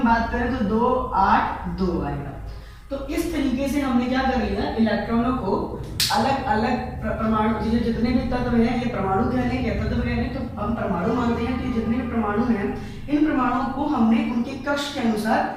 बात करें तो 2 8 2 आएगा। तो इस तरीके से हमने क्या कर लिया, इलेक्ट्रॉनों को अलग अलग परमाणु, जितने भी तत्व हैं ये परमाणु कह लें या तत्व कह लें, तो हम परमाणु मानते हैं। तो जितने भी परमाणु हैं इन परमाणुओं को हमने उनके कक्ष के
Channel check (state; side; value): identical; both; correlation 1.00